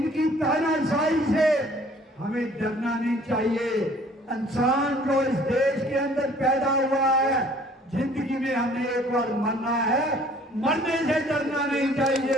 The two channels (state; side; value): normal; both; correlation 0.55